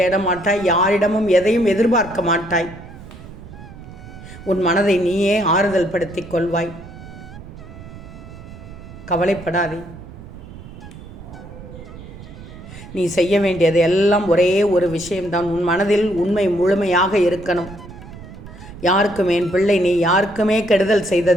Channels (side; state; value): right; noise; rumble, 15 dB below the sound